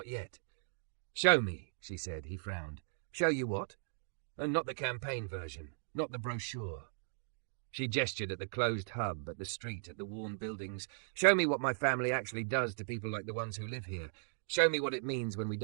yet. Show me, she said. He frowned. Show you what? And not the campaign version, not the brochure. She gestured at the closed hub, at the street, at the worn buildings. Show me what my family actually does to people like the ones who live here. Show me what it means when we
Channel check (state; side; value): silent; left; digital silence